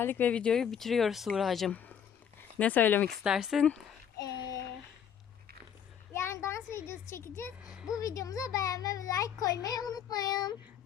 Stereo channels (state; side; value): quieter; right; 8.4 dB